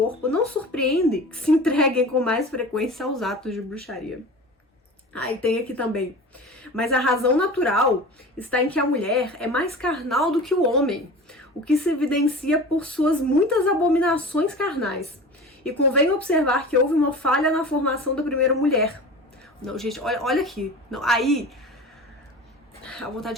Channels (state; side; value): normal; both; correlation 0.36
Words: não surpreende que se entreguem com mais frequência aos atos de bruxaria. E tem aqui também. Mas a razão natural está em que a mulher é mais carnal do que o homem, o que se evidencia por suas muitas abominações carnais. E convém observar que houve uma falha na formação da primeira mulher. Não, gente, olha aqui. Não, aí, a